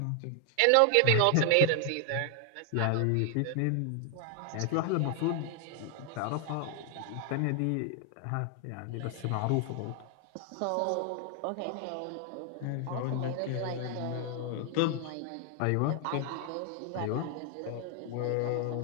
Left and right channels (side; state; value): both; different; correlation 0.00